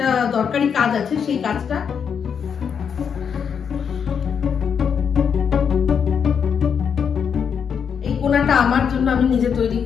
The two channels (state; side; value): quieter; right; 7.1 dB